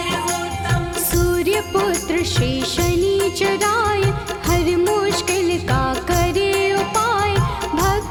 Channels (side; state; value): both; identical; correlation 1.00